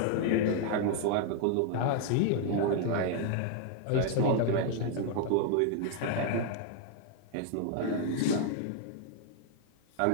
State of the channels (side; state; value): both; different; correlation 0.00